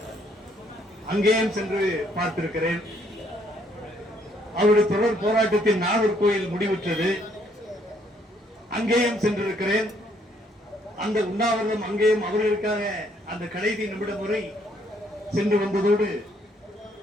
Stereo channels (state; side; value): normal; both; correlation 0.68